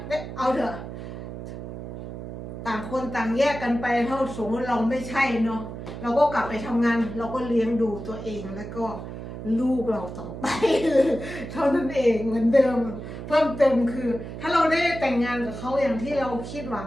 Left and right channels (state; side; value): noise; right; hum, 9 dB below the sound